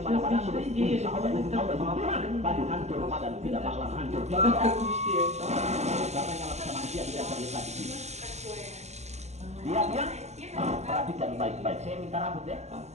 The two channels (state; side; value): late; left; 0.32 ms